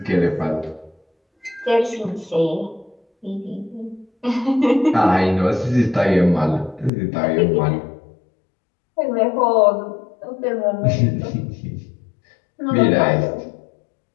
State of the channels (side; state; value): right; drops out; at 6.9 s